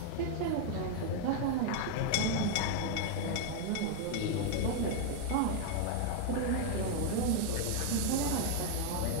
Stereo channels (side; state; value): both; different; correlation 0.00